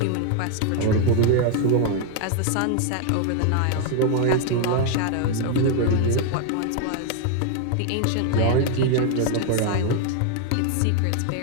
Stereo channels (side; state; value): both; different; correlation 0.00